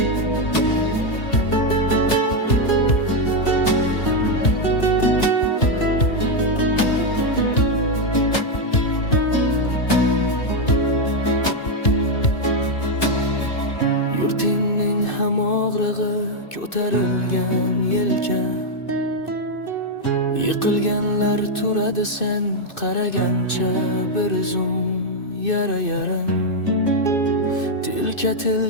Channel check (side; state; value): right; late; 2.6 ms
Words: Yurtingning ham og'rig'i ko'tarilgan yelka. Yiqilganlar turadi sen qaragancha bir zum yara-yaram.